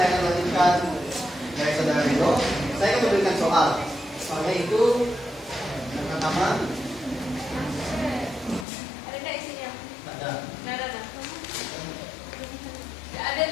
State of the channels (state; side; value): drops out; right; at 8.7 s